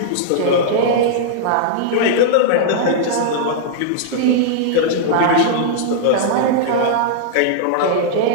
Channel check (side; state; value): both; different; correlation -0.01